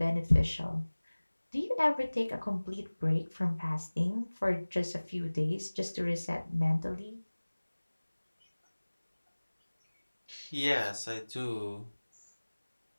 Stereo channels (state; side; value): inverted; both; correlation -1.00